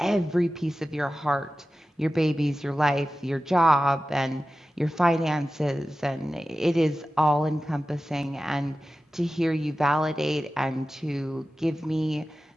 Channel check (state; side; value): normal; both; correlation 0.94